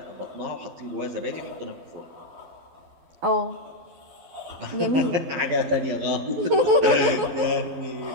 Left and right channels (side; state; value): left; late; 12 ms